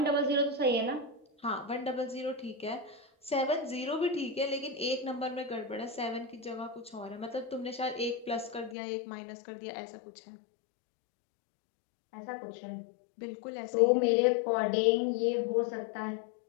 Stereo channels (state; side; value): drops out; right; at 8.8 s